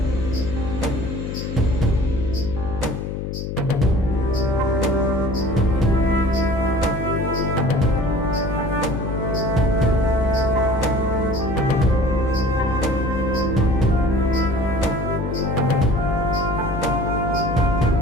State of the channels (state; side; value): noise; left; hum, 5 dB below the sound